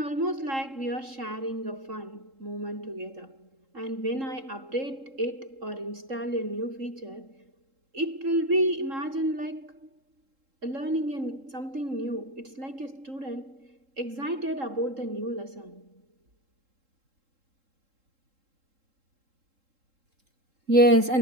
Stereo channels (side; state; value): left; late; 3.7 ms